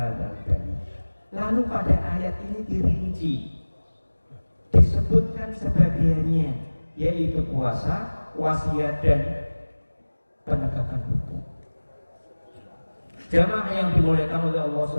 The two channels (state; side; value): inverted; both; correlation -1.00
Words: bait. Lalu pada ayat ini dirinci, disebutkan sebagiannya, yaitu puasa, wasiat, dan penegakan hukum. Jamaah yang dimuliakan oleh Allah